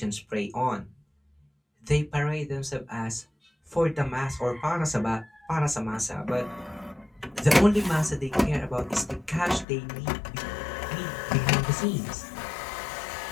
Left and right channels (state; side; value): drops out; right; at 9.7 s